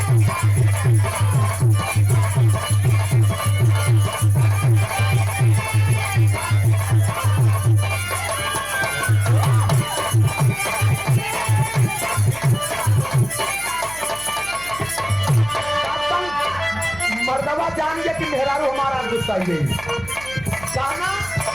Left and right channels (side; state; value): right; noise; hum, 19 dB below the sound